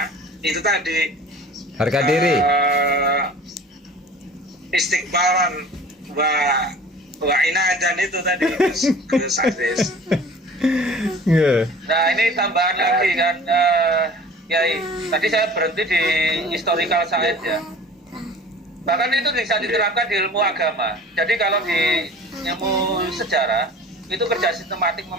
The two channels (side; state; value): both; normal; correlation 0.44